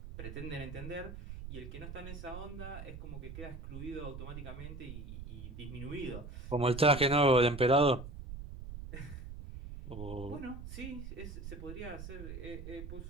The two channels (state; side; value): noise; right; rumble, 10 dB below the sound